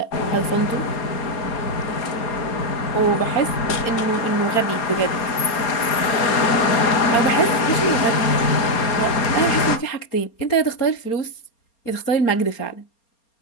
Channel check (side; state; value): right; late; 4.3 ms